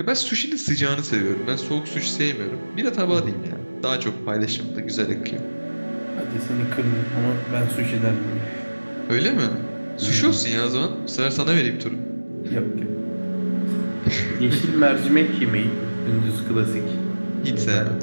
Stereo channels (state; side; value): inverted; both; correlation -1.00